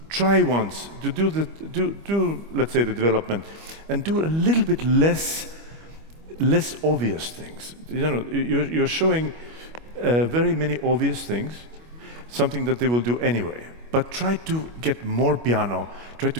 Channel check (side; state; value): left; late; 25 ms